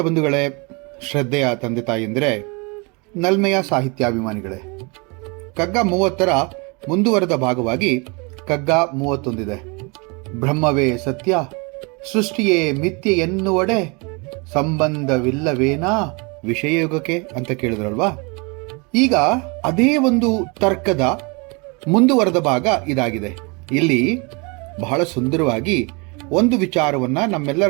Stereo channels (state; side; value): quieter; left; 30.1 dB